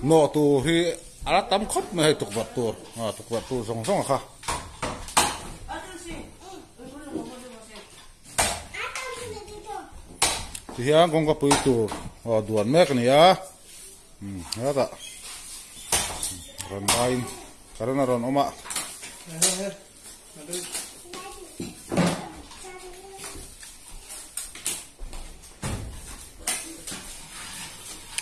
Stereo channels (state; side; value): identical; both; correlation 1.00